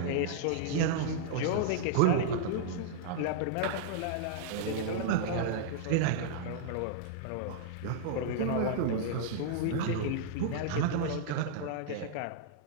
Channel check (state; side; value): different; both; correlation -0.01